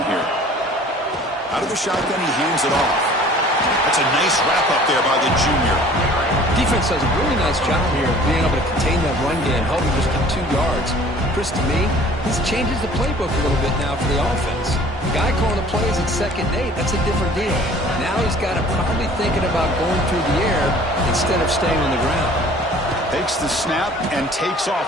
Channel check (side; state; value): both; normal; correlation 0.50